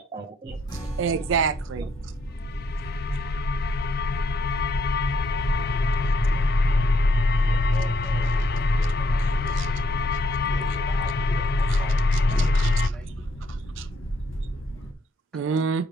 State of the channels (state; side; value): normal; both; correlation 0.73